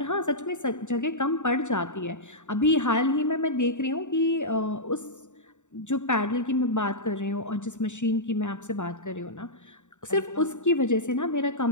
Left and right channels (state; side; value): late; right; 0.85 ms